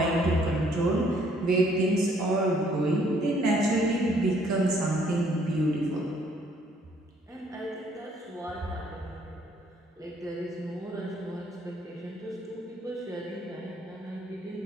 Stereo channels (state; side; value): normal; both; correlation 0.64